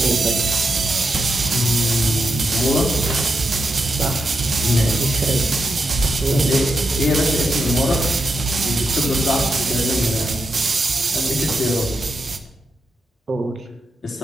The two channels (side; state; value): both; normal; correlation 0.85